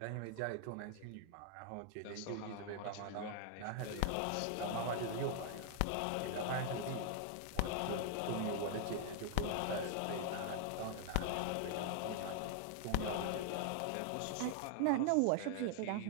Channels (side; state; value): both; different; correlation 0.00